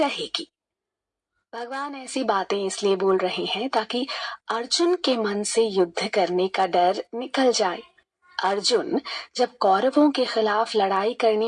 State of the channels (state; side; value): identical; both; correlation 1.00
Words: भगवान ऐसी बातें इसलिए बोल रहे हैं ताकि अर्जुन के मन से युद्ध करने का डर निकल जाए। अर्जुन जब कौरवों के खिलाफ लड़ाई